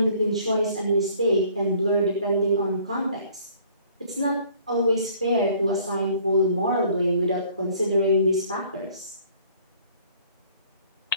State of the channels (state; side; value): inverted; both; correlation -0.57